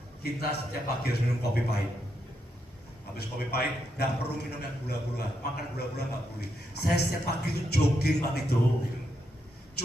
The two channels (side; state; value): both; normal; correlation 0.81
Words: Kita setiap pagi harus minum kopi pahit. Habis kopi pahit, nggak perlu minum yang gula-gula, makan gula-gula nggak boleh. Saya setiap pagi itu jogging Pak itu.